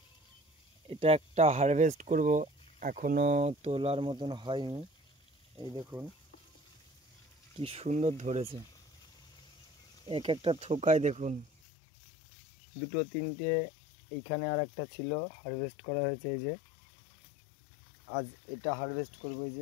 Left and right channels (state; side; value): drops out; right; at 11.5 s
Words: এটা একটা হারভেস্ট করব, এখনো তোলার মতন হয়নি। এই দেখুন কি সুন্দর ধরেছে, এক একটা থোকায় দেখুন দুটো তিনটে। এইখানে আর একটা ছিল, হারভেস্ট করা হয়েছে। এই যে আজ এটা হারভেস্ট করবো। এই